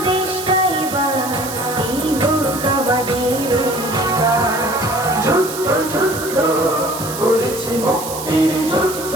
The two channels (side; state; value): right; noise; hiss, 9 dB below the sound